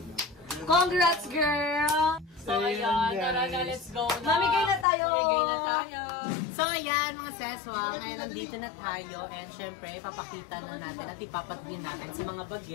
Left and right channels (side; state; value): right; drops out; at 4.9 s